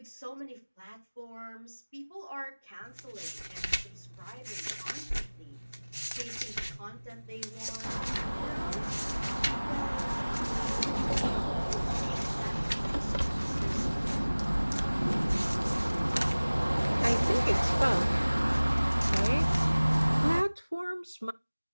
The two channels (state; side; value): inverted; both; correlation -1.00